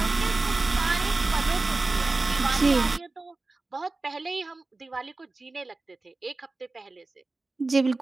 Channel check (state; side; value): quieter; left; 3.4 dB